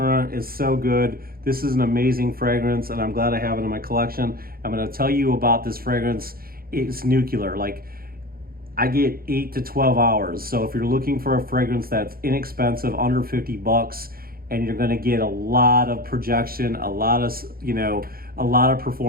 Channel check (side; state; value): left; late; 0.43 ms